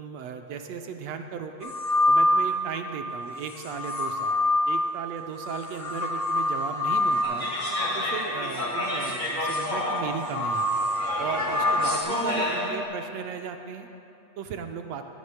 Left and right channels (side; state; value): left; late; 8.4 ms